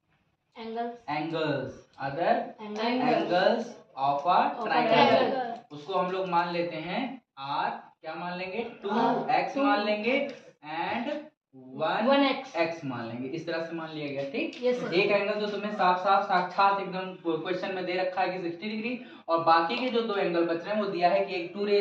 angles of a triangle, उसको हम लोग मान लेते हैं r, क्या मान लेंगे, 2x मान लेंगे एंड 1x मान लेंगे। इस तरह से मान लिया गया, ठीक। एक एंगल जो तुम्हें साफ साक्षात एकदम क्वेश्चन में दे रखा है कि 60 डिग्री, और बाकी के जो 2 एंगल बच रहे हैं वो दिया है कि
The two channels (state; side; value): identical; both; correlation 1.00